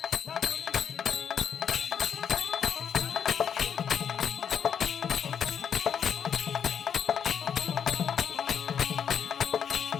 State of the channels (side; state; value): right; quieter; 7.9 dB